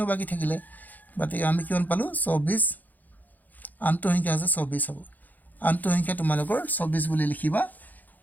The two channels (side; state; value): right; late; 0.083 ms